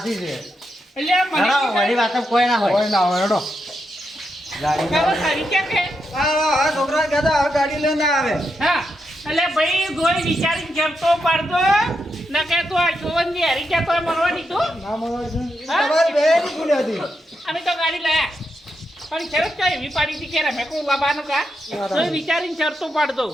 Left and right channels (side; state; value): both; normal; correlation 0.84